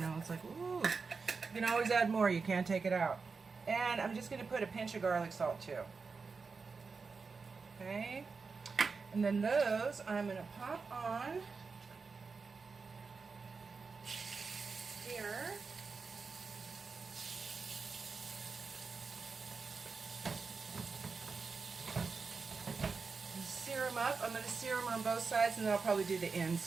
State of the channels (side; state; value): left; quieter; 4.8 dB